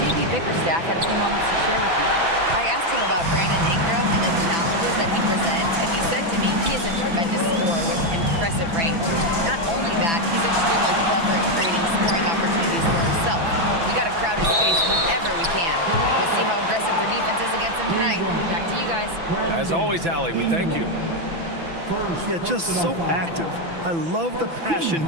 Bickerstaff had a few moments to share with me. I asked him about Brandon Ingram and the challenges that he presents, and he said to me he is a tremendous scorer with impressive range. Not only that, he's extremely clever at creating scoring opportunities for himself. We got to crowd his space whenever we can. We'll see how aggressive their defense is against him tonight. Back to you guys. As always, Ali, we thank you. Yeah, just so active. I love the passion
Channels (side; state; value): left; late; 6.0 ms